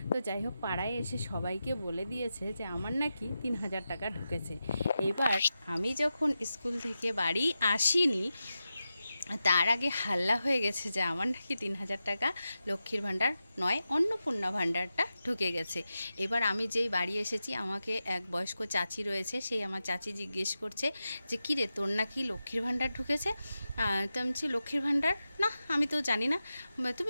তো যাই হোক, পাড়ায় এসে সবাইকে বলে দিয়েছে যে আমার নাকি 3,000 টাকা ঢুকেছে। এবার আমি যখন স্কুল থেকে বাড়ি আসিনি, তার আগে হাল্লা হয়ে গেছে যে আমার নাকি 3,000 টাকা লক্ষ্মীর ভাণ্ডার নয়, অন্নপূর্ণা ভাণ্ডারটা ঢুকে গেছে। এবার আমি যেই বাড়ি এসেছি, আমাকে এক বয়স্ক চাচি রয়েছে, সেই আমার চাচি জিজ্ঞেস করছে যে কী রে, তোর নাকি লক্ষ্মীর ভাণ্ডার ঢুকেছে? তো আমি বলছি, লক্ষ্মীর ভাণ্ডার না, আমি তো জানি না।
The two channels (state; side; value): inverted; both; correlation -0.91